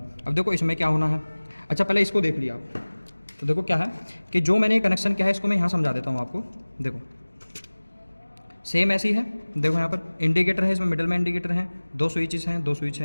अब देखो इसमें क्या होना है। अच्छा, पहले इसको देख लिया आप, तो देखो क्या है कि जो मैंने कनेक्शन किया है इसको मैं यहाँ समझा देता हूँ आपको। देखो सेम ऐसी है, देखो यहाँ पर इंडिकेटर है, इसमें मिडल में इंडिकेटर है, 2 स्विचेस हैं, 2 स्विच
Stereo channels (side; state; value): both; inverted; correlation -1.00